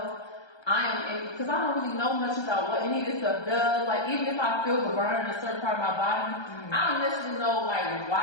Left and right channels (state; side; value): late; right; 1.3 ms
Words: because I don't really know much about what any of this stuff does. Even if I feel the burn in a certain part of my body, I don't necessarily know